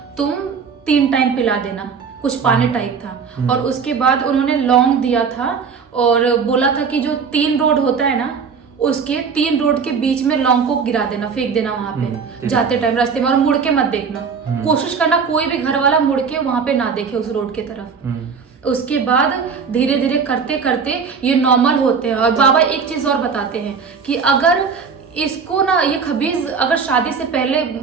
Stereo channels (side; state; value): left; quieter; 5.8 dB